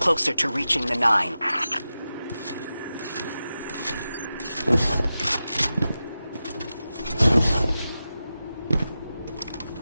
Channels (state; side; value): inverted; both; correlation -0.92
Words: to reaching the 9.